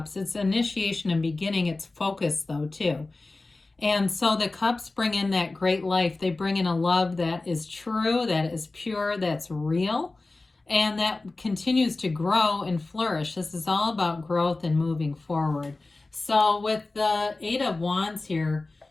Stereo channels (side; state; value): right; quieter; 3.3 dB